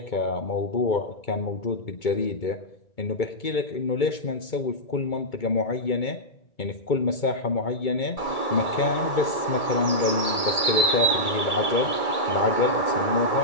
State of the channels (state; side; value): late; right; 2.2 ms